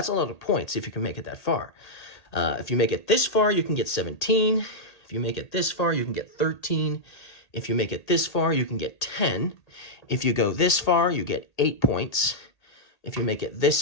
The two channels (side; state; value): right; late; 1.8 ms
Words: a lot of points if you can make it that far. If you make it this far, you can get 17. If you make it this far, you can get 13. If you make it this far, you can get 10. If you go this far, you get 8 points. If you make it this